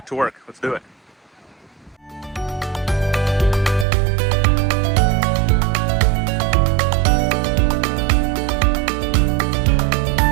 to work. Let's do it.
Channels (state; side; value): drops out; left; at 3.9 s